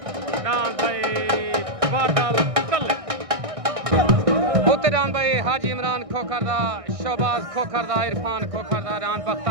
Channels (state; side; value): late; left; 1.6 ms